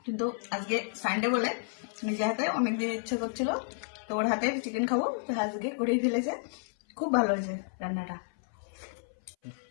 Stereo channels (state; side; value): silent; right; 57 dB below the other